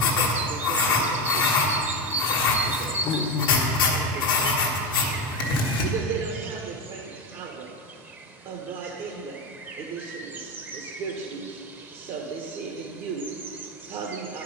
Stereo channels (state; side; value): normal; both; correlation 0.16